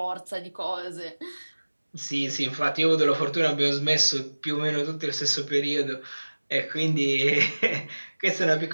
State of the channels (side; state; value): both; inverted; correlation -1.00